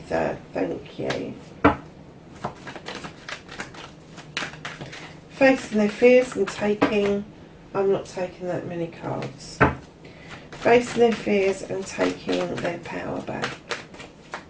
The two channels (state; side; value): identical; both; correlation 1.00